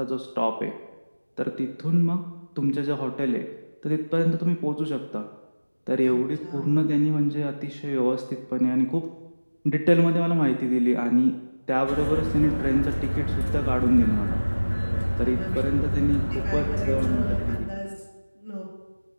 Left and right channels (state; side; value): inverted; both; correlation -1.00